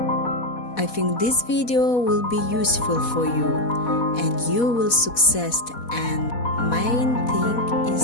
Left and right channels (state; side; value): late; right; 4.1 ms